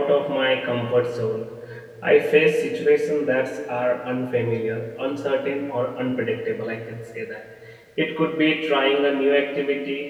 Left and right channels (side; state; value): both; identical; correlation 1.00